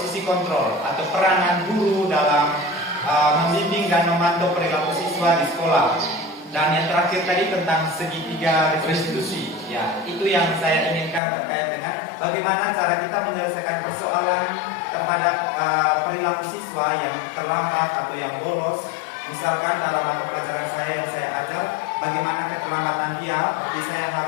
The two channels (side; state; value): right; drops out; at 11.2 s